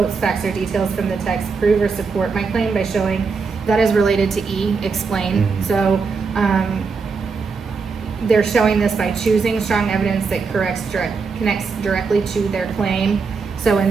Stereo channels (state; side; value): quieter; left; 4.9 dB